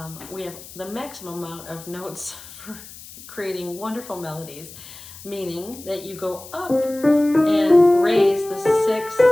We have the maximum amount of notes for creating wonderful melodies, meaning that you go up and raise the 6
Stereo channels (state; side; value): noise; left; hiss, 17 dB below the sound